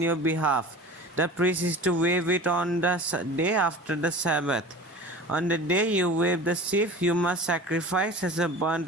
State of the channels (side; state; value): both; normal; correlation 0.38